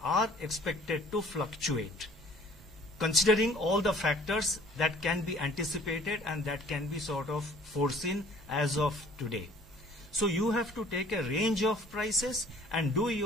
are expected to fluctuate, considering all the factors that can be anticipated and that can be sort of foreseen as of today. So you have to take a range of prices and do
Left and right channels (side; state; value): both; normal; correlation 0.53